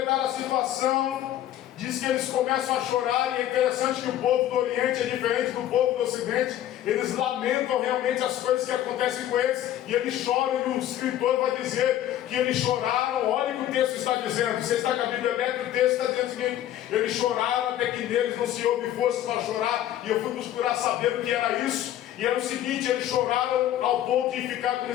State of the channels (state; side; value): quieter; right; 12.2 dB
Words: a situação, diz que eles começam a chorar. E é interessante que o povo do Oriente é diferente do povo do Ocidente. Eles lamentam realmente as coisas que acontecem com eles, e eles choram, e o escritor vai dizer que eles choraram. Olha o que o texto está dizendo. Você está com a Bíblia aberta, o texto está dizendo o seguinte: eles choraram até que neles não se houve força para chorar. E eu fui procurar saber o que era isso, e era o seguinte: eles choraram ao ponto de ficar como